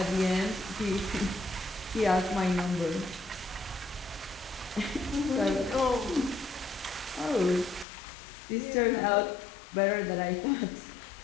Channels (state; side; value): drops out; right; at 7.9 s